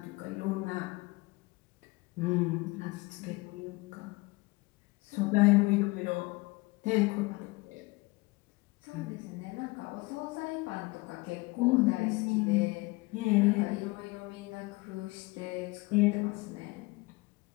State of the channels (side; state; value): right; quieter; 23.7 dB